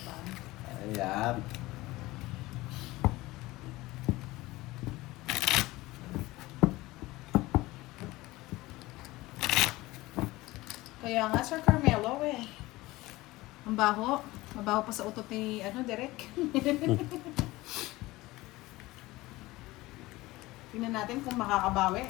Ayan. Kaya nga, Sir Carmelo, eh. Ang baho. Mabaho pa sa utot ni, Derek. Tingnan natin kung makakabawi.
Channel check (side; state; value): right; quieter; 19.5 dB